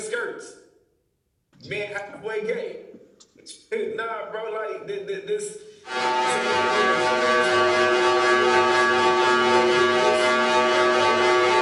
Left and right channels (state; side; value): identical; both; correlation 1.00